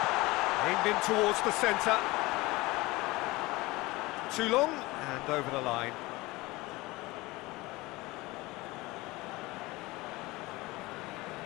Aimed in towards the centre. Too long, and over the line.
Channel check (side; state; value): right; quieter; 21.3 dB